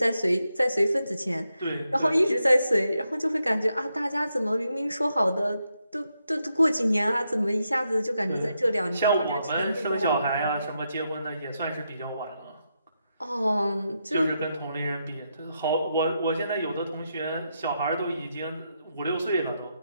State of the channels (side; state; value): both; inverted; correlation -0.83